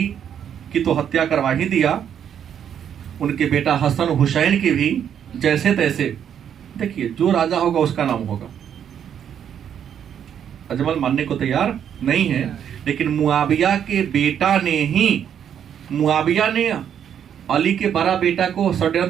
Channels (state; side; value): quieter; left; 8.9 dB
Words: की तो हत्या करवा ही दिया, उनके बेटा हसन हुसैन की भी जैसे तैसे। देखिए, जो राजा होगा उसका नाम होगा। अजमल मानने को तैयार नहीं है, लेकिन मुआविया के बेटा ने ही, मुआविया ने अली के बड़ा बेटा को